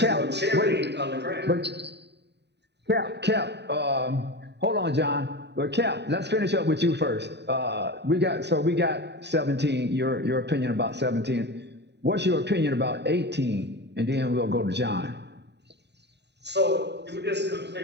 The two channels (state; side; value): late; left; 0.50 ms